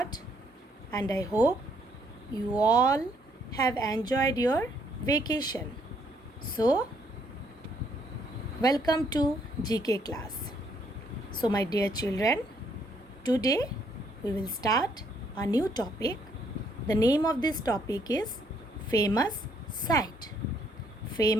and I hope you all have enjoyed your vacation. So, welcome to GK class. So, my dear children, today we will start a new topic. The name of this topic is Famous Sight.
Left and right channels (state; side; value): normal; both; correlation 0.69